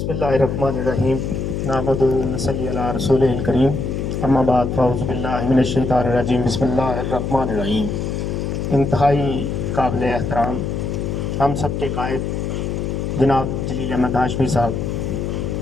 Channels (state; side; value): noise; left; hum, 2 dB below the sound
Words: اللہ الرحمن الرحیم نحمدہ و نصلی علی رسولہ الکریم اما بعد فاعوذ باللہ من الشیطان الرجیم بسم اللہ الرحمن الرحیم۔ انتہائی قابل احترام ہم سب کے قائد جناب جلیل احمد ہاشمی صاحب،